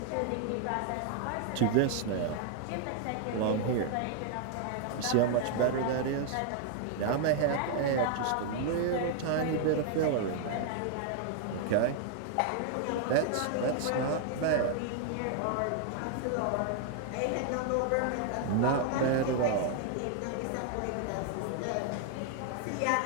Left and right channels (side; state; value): both; different; correlation 0.00